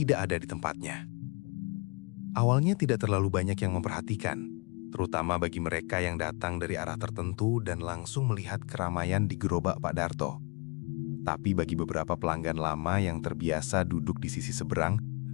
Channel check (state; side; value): quieter; right; 31.7 dB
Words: ada di tempatnya. Awalnya tidak terlalu banyak yang memperhatikan, terutama bagi mereka yang datang dari arah tertentu dan langsung melihat keramaian di gerobak Pak Darto. Tapi bagi beberapa pelanggan lama yang terbiasa duduk di sisi seberang,